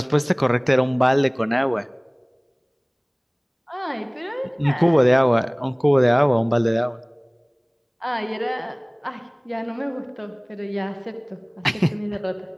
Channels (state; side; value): identical; both; correlation 1.00